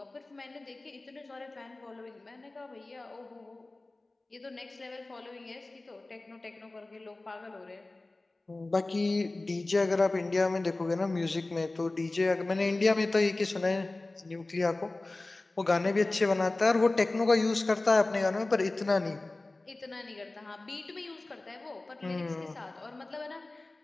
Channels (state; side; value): quieter; right; 3.0 dB